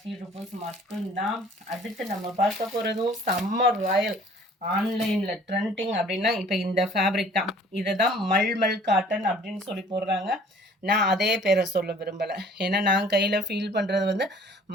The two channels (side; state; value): both; normal; correlation 0.52